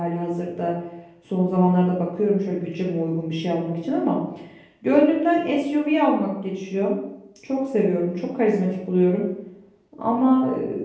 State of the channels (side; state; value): both; identical; correlation 1.00